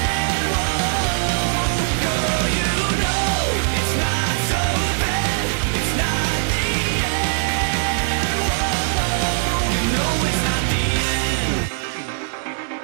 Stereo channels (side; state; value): left; silent; digital silence